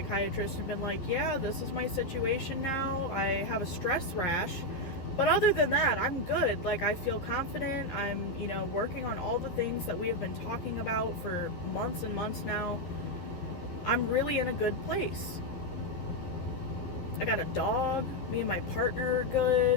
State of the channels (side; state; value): right; late; 11 ms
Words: and been like, yeah, this is my situation now. I have a stress rash. But other than that, I'm good. Like, I feel confident. I'm, you know, working on all the things that we have been talking about for months and months now. I'm really in a good place. I got a dog. Me and my partner are